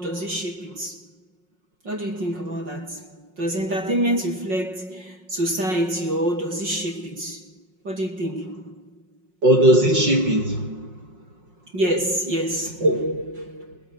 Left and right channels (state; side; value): late; left; 5.5 ms